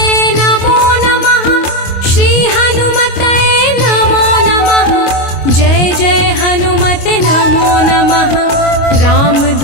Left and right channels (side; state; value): right; late; 25 ms